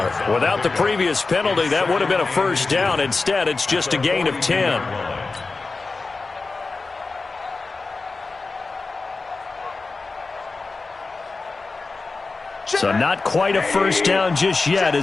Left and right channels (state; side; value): quieter; right; 3.9 dB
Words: Without the previous penalty, that would have been a 1st down. Instead, it's just a gain of 10. So not quite a first down just yet